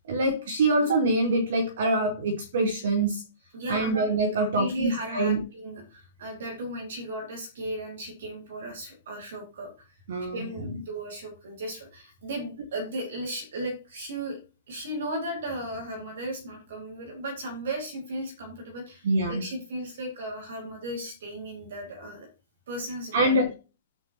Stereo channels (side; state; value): both; inverted; correlation -0.46